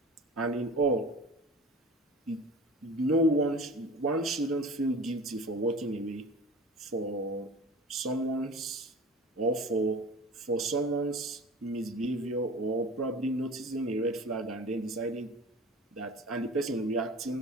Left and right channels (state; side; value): normal; both; correlation 0.38